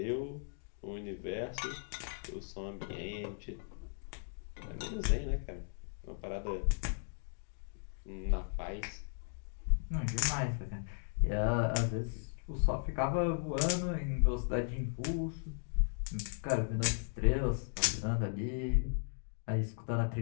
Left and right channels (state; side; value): silent; right; digital silence